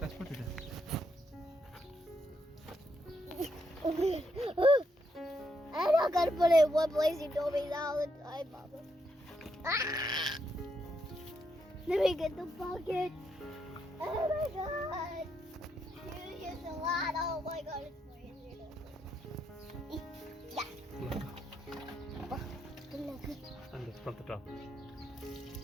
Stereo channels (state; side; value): normal; both; correlation 0.78